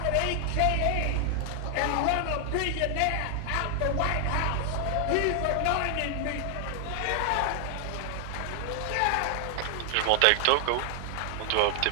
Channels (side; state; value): both; different; correlation 0.00